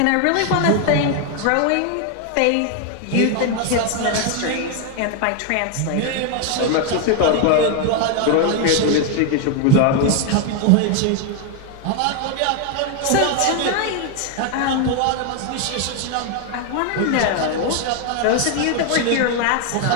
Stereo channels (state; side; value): different; both; correlation 0.01